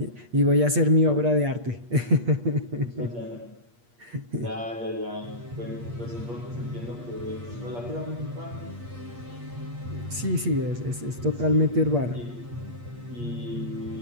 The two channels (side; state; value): left; late; 8.5 ms